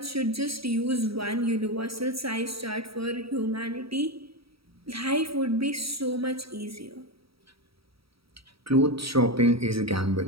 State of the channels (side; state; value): left; late; 0.76 ms